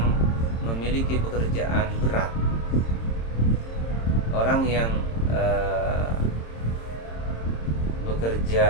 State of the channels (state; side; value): late; right; 26 ms